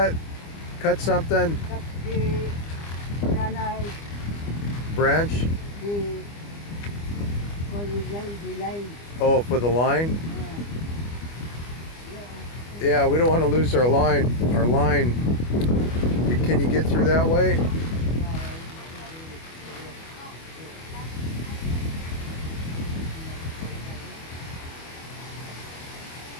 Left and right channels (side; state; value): right; late; 25 ms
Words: something? Cut the banana, Branch? the, the line. Oh, for the line? Yeah, we don't want to lose our line. Can you get through that way?